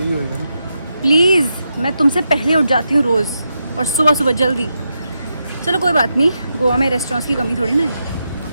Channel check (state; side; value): inverted; both; correlation -0.85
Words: होगा ना. प्लीज मैं तुमसे पहले उठ जाती हूँ रोज और सुबह जल्दी. चलो कोई बात नहीं. गोवा में रेस्टोरेंट्स की कमी थोड़ी ना है.